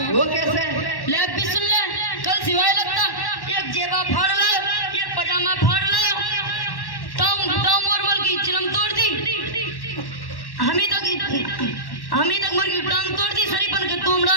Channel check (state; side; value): late; right; 1.1 ms